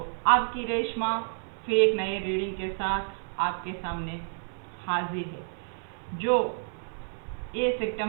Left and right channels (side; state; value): left; silent; 58 dB below the other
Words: आपकी रेशमा फिर एक नए रीडिंग के साथ आपके सामने हाजिर है। जो 1